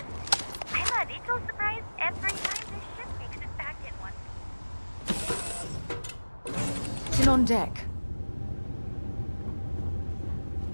I'm a little surprised every time this ship makes it back in one. Still on deck.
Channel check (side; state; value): both; inverted; correlation -1.00